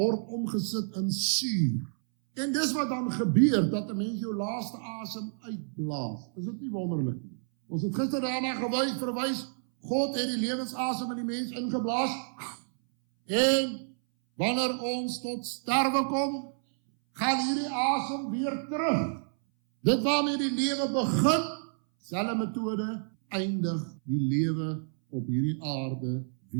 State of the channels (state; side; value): silent; left; 58 dB below the other